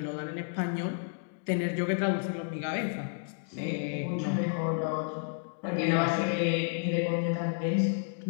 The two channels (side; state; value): right; silent; digital silence